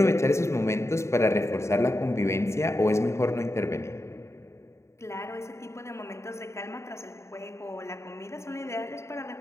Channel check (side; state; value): right; late; 0.14 ms